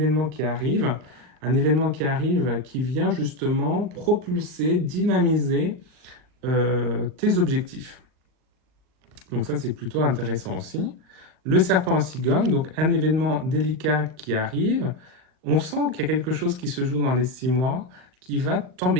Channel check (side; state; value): left; late; 39 ms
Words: qui arrive, qui vient justement propulser, dynamiser tes objectifs. Donc ça, c'est plutôt intéressant aussi. Le serpent en cigogne, donc un événement délicat qui arrive. On sent qu'il y a quelque chose qui se joue dans les 6 mois qui va